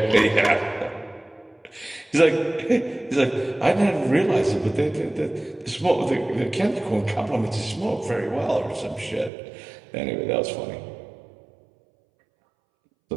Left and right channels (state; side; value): drops out; left; at 9.3 s